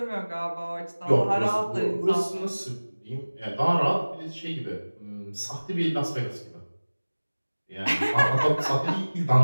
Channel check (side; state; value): both; inverted; correlation -1.00